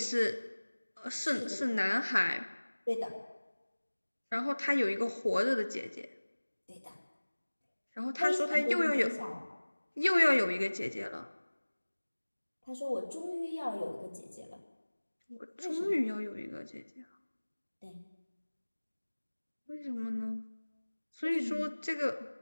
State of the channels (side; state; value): both; inverted; correlation -1.00